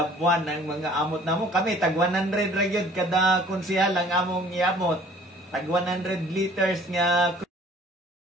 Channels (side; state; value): both; normal; correlation 0.53